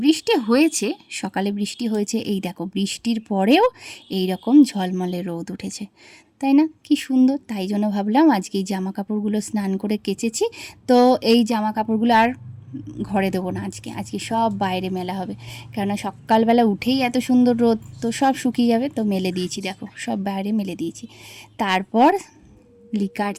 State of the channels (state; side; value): identical; both; correlation 1.00